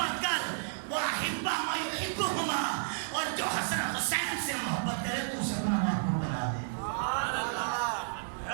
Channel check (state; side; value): silent; left; 57 dB below the other